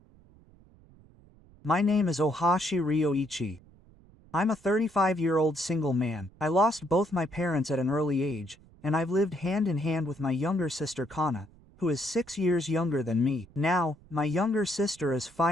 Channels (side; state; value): right; noise; rumble, 26 dB below the sound